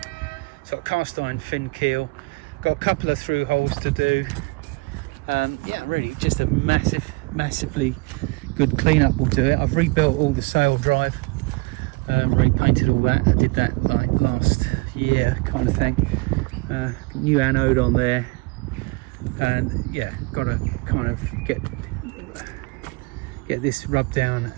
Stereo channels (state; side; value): quieter; left; 27.1 dB